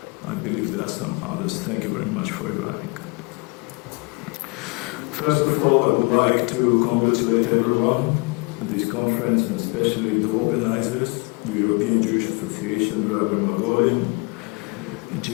I believe there are some others. Thank you very much for arriving. First of all, I would like to congratulate everyone at this conference, and especially the organizers, the European Jewish Association, Rabbi Margolin, and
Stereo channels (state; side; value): quieter; right; 30.5 dB